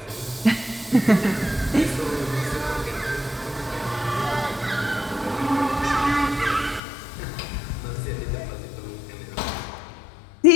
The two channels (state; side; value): drops out; right; at 6.8 s